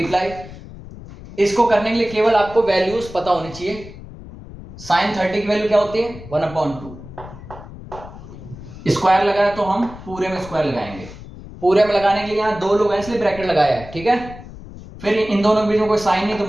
इसको करने के लिए केवल आपको वैल्यूज पता होनी चाहिए। साइन 30 की वैल्यू क्या होती है? 1/2। स्क्वायर लगाया तो हम पूरे में स्क्वायर लगाएंगे। पूरे में लगाने के लिए यहां 2 लोग हैं इसलिए ब्रैकेट लगाया है, ठीक है। फिर इन दोनों के बीच में कोई साइन नहीं तो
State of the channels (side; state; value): left; noise; rumble, 15 dB below the sound